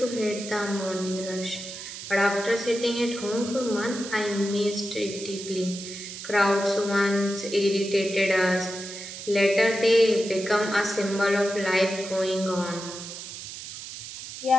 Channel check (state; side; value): noise; right; hiss, 10 dB below the sound